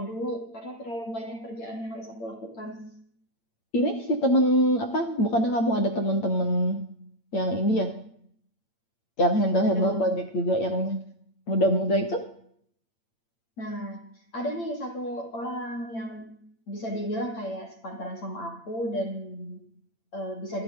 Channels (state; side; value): late; right; 8.8 ms